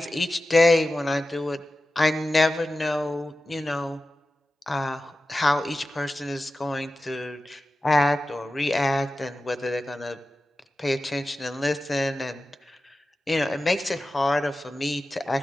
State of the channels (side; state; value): both; normal; correlation 0.94